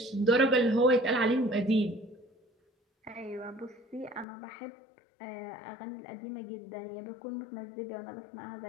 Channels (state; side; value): drops out; right; at 4.2 s